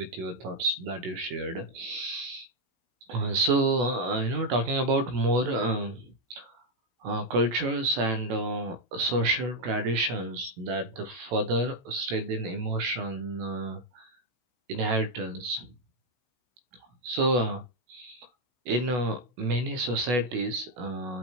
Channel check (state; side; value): late; left; 16 ms